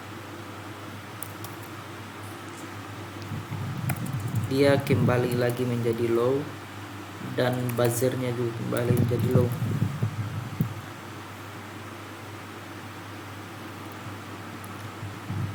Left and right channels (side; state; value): both; identical; correlation 1.00